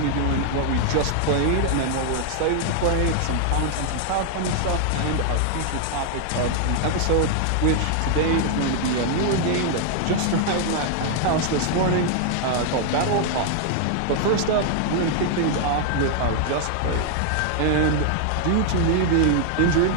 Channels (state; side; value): different; both; correlation 0.00